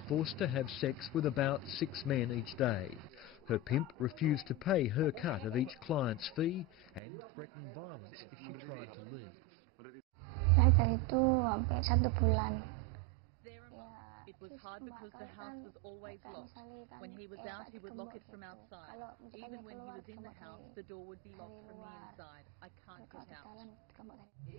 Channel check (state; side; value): drops out; left; at 7.0 s